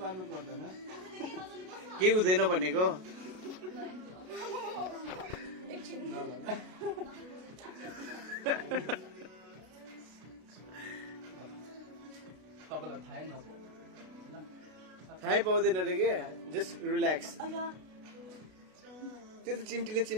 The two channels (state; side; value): late; left; 33 ms